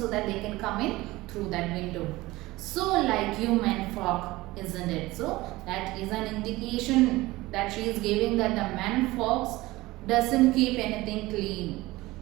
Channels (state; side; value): quieter; left; 19.4 dB